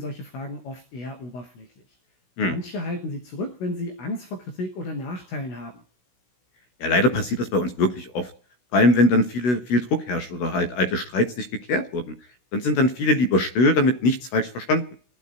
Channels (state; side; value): late; right; 16 ms